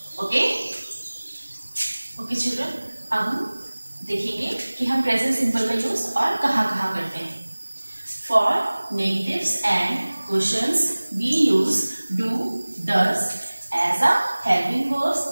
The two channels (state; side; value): inverted; both; correlation -1.00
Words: ओके, ओके चिल्ड्रन, अब हम देखेंगे कि हम प्रेजेंट सिंपल का यूज और कहाँ करते हैं। For negatives and questions we use do does as a helping verbs